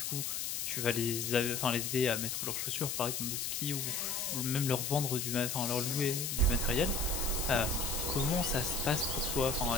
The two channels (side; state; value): left; noise; hiss, 2 dB below the sound